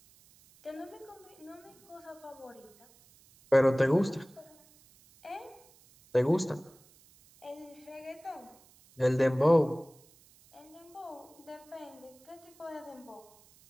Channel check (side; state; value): right; noise; hiss, 27 dB below the sound